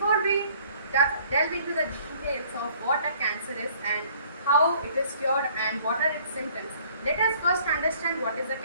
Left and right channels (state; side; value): inverted; both; correlation -0.57